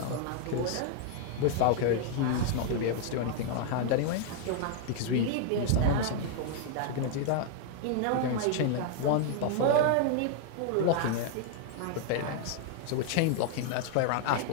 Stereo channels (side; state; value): both; different; correlation 0.00